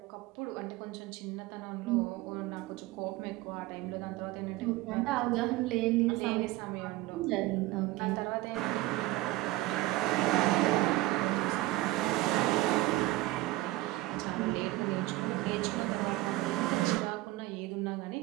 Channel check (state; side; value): quieter; left; 18.3 dB